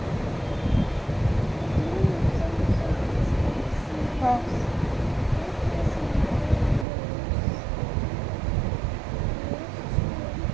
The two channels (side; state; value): left; drops out; at 6.9 s